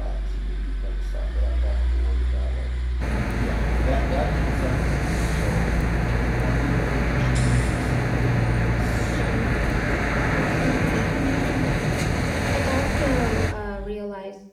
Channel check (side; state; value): both; identical; correlation 1.00